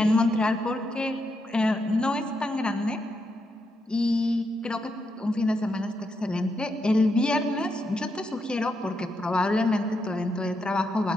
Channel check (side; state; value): both; normal; correlation 0.82